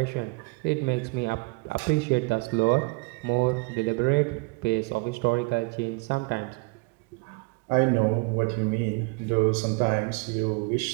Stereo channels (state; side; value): quieter; left; 27.7 dB